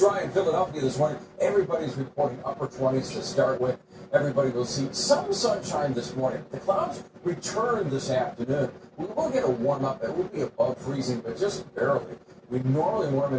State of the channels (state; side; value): identical; both; correlation 1.00